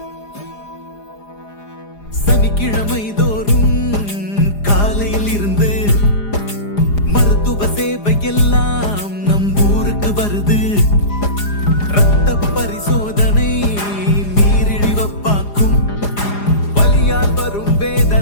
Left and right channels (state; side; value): late; right; 4.9 ms